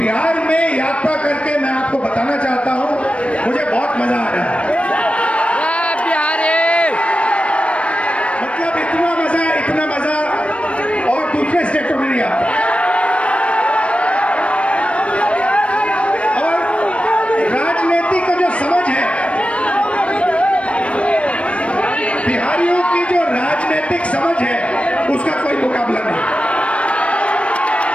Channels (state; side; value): late; right; 0.062 ms